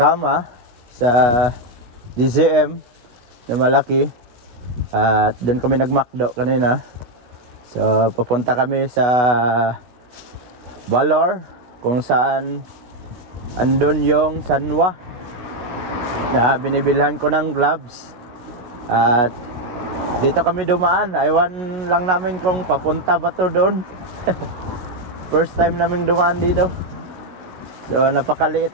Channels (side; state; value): left; late; 16 ms